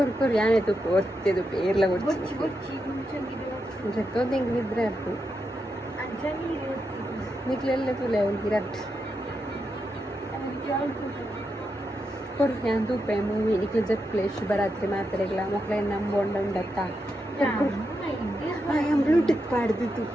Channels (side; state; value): both; normal; correlation 0.85